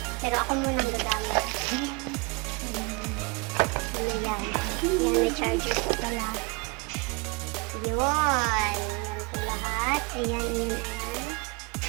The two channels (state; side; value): quieter; left; 27.8 dB